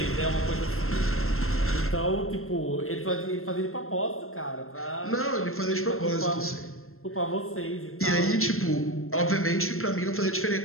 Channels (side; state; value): right; late; 0.62 ms